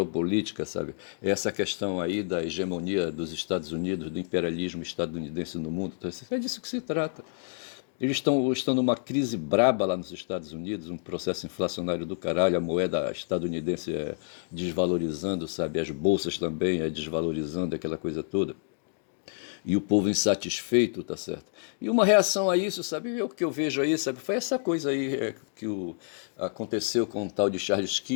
sabe, é essa questão aí da hegemonia dos Estados Unidos, do imperialismo estadunidense no mundo, tá certo? É disso que se trata. Eles estão numa crise braba lá nos Estados Unidos, um processo inflacionário do caralho, a moeda estadunidense desvalorizando, sabe, as bolsas também desvalorizando, aquela coisa toda. E o povo insatisfeito, tá certo? E uma reação a isso, sabe, o que eu vejo aí, sabe, foi essa coisa aí aconteceu com o tal de Charles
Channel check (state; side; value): silent; right; digital silence